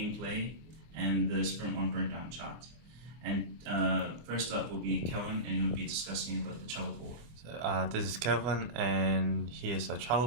and the Sprint 1 Burndown chart. And first up will be Calvin, and he'll be discussing about the Trello board. So, this is Calvin, and here's a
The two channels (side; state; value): left; late; 24 ms